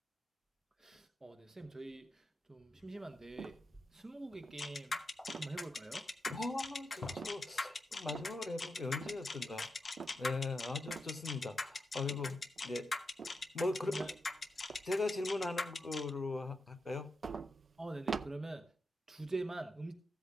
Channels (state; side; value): normal; both; correlation 0.87